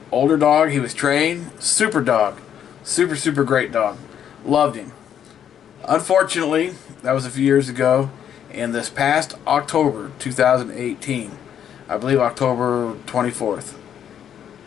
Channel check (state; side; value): quieter; right; 9.3 dB